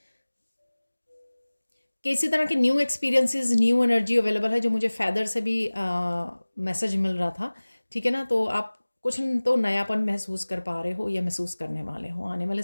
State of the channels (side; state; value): both; inverted; correlation -1.00